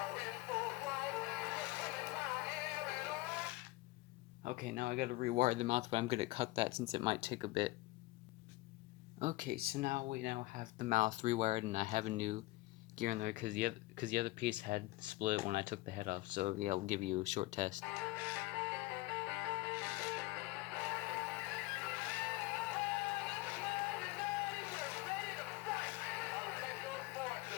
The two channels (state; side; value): quieter; right; 20.0 dB